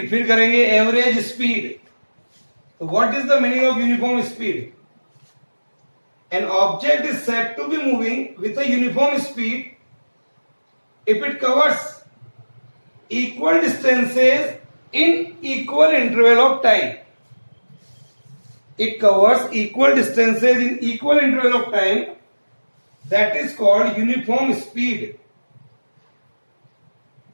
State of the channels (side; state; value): both; inverted; correlation -1.00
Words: फिर करेंगे average speed. So what is the meaning of uniform speed? An object is said to be moving with a uniform speed if it covers equal distances in equal interval of time. It covers equal distances in equal interval of time. That is called uniform speed.